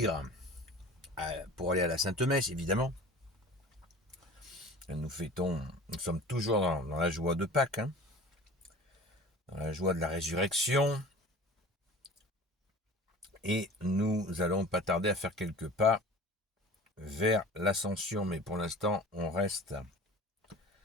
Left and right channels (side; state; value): both; normal; correlation 0.41